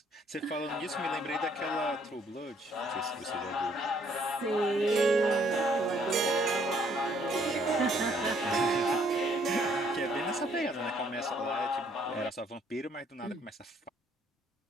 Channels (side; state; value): both; normal; correlation 0.65